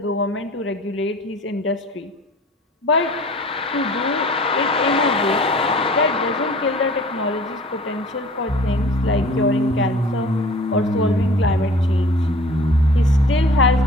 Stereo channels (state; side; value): normal; both; correlation 0.46